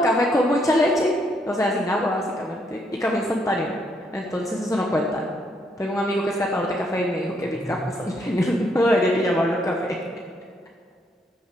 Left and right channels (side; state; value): both; normal; correlation 0.73